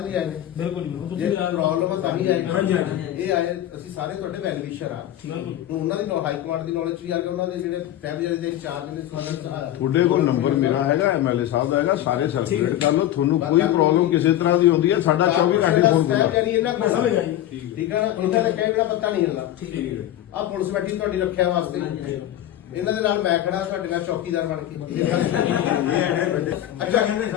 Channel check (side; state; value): right; quieter; 12.6 dB